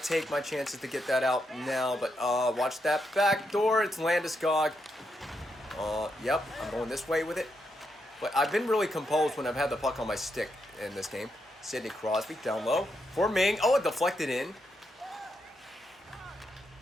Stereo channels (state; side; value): normal; both; correlation 0.82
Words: my chances to get that out now, but watch that back door. It's Landeskog. Yep, I'm going this way with it. But I've been really composed when I've had the puck on my stick in this game. Sidney Crosby down low for Ming. Oh, it deflected in.